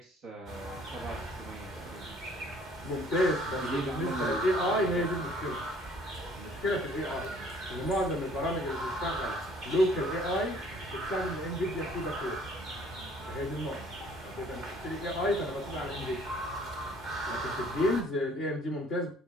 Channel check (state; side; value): normal; both; correlation 0.57